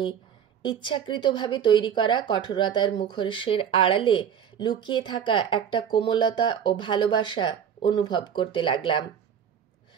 ইচ্ছাকৃতভাবে তৈরি করা কঠোরতার মুখোশের আড়ালে লুকিয়ে থাকা একটা কোমলতা ও ভালোবাসা অনুভব করতে লাগলাম।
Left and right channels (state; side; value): quieter; left; 8.3 dB